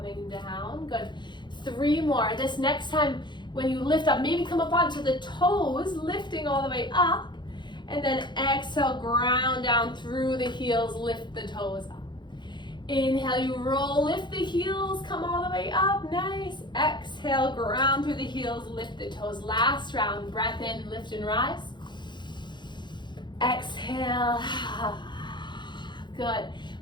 down, good. 3 more. This next time when you lift up, maybe come up onto the toes, lifting all the way up. And then exhale, ground down through the heels, lift the toes up. Inhale, you roll, lift the heels, come all the way up, nice. Exhale, ground through the heels, lift the toes. Last round, breath in, lift and rise. Exhale, good.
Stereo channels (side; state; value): right; late; 0.22 ms